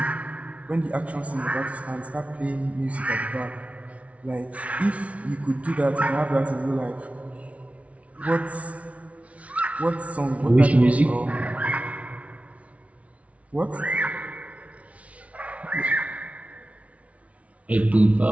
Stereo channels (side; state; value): left; late; 0.065 ms